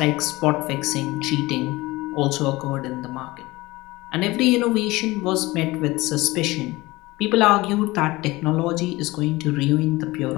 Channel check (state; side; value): quieter; right; 20.5 dB